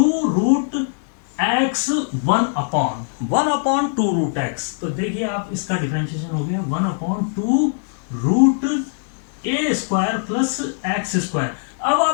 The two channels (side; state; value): right; silent; digital silence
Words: 1/2√x। तो देखिए आप, इसका डिफरेंशिएशन हो गया 1/2√a² प्लस x²। अब